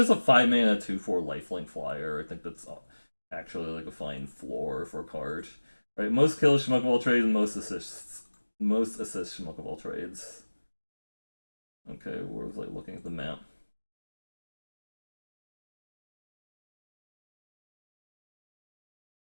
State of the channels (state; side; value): inverted; both; correlation -1.00